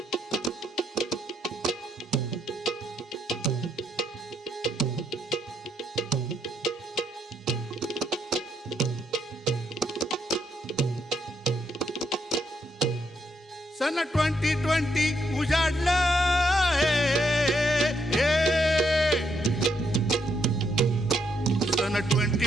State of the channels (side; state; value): both; normal; correlation 0.76